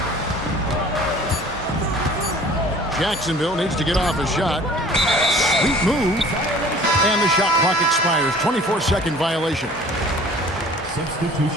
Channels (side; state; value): both; normal; correlation 0.48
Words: Jacksonville needs to get off a shot. Sweet move. And the shot clock expires. 24-second violation.